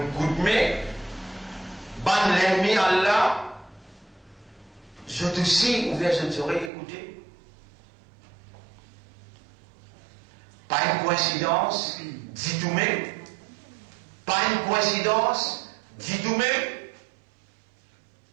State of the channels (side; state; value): left; drops out; at 6.7 s